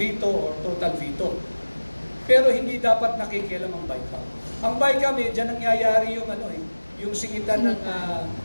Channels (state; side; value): inverted; both; correlation -1.00